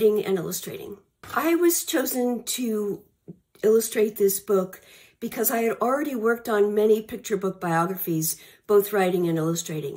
and illustrating. I was chosen to illustrate this book because I had already worked on many picture book biographies, both writing and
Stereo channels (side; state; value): both; identical; correlation 1.00